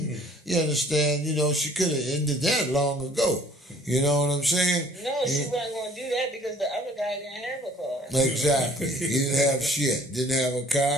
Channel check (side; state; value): both; normal; correlation 0.55